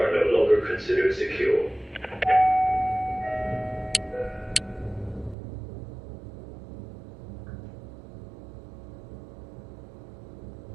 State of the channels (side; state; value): left; drops out; at 5.4 s